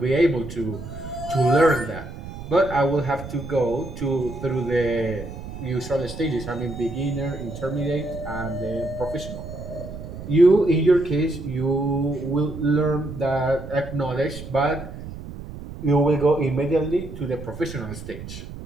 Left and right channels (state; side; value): noise; right; rumble, 11 dB below the sound